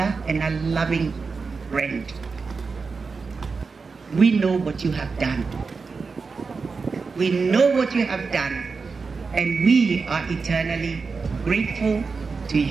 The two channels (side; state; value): left; quieter; 4.7 dB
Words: and a loving friend. We know what you have done. We know what you have done, and we are eternally grateful to